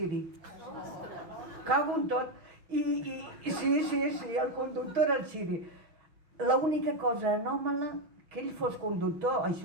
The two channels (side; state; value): left; late; 6.3 ms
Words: Cago en tot. Sí, el conductor era el Xiri. L'única cosa anòmala que ell fos conductor,